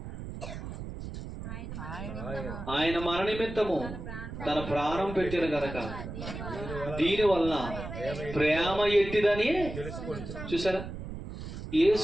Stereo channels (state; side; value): noise; right; rumble, 9 dB below the sound